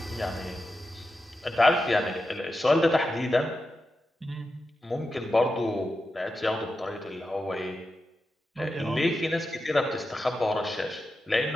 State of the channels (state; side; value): normal; both; correlation 0.90